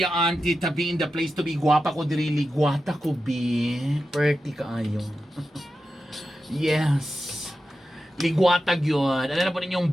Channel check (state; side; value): normal; both; correlation 0.90